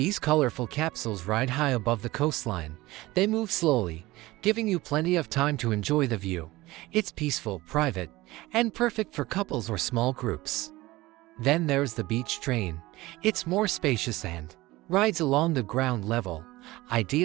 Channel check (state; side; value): quieter; left; 19.1 dB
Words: colorful capsules ride high above the coastline. They move slowly, giving you plenty of time to enjoy the view. It's peaceful, private, and perfect for couples or small groups. Then there's the beach train. It's more spacious and rides along the ground level,